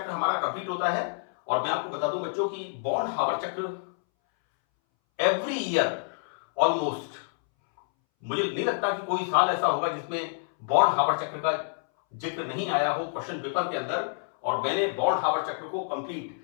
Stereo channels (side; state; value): right; silent; 59 dB below the other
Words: हमारा कंप्लीट होता है। और मैं आपको बता दूं बच्चों कि बॉन्ड हावर चक्र एवरी ईयर ऑलमोस्ट, मुझे नहीं लगता कि कोई साल ऐसा होगा जिसमें बॉन्ड हावर चक्र का जिक्र नहीं आया हो क्वेश्चन पेपर के अंदर। और मैंने बॉन्ड हावर चक्र को कंप्लीट